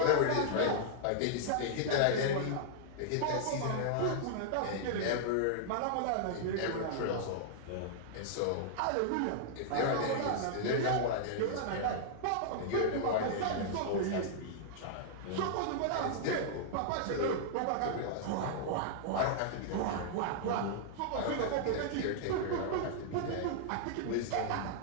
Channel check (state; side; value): different; both; correlation -0.01